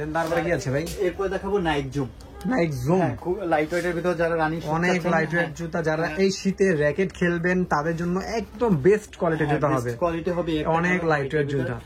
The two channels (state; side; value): identical; both; correlation 1.00